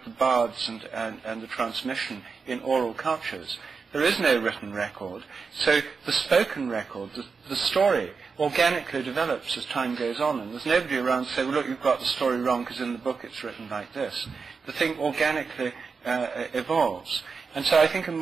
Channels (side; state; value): left; quieter; 5.1 dB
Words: the bards and the transmission in oral cultures. There is no written record, so the spoken record, the story, organically develops as time goes on, and there's nobody around to say, well, look, you've got the story wrong because in the book it's written like this. The thing organically evolves. And so I think a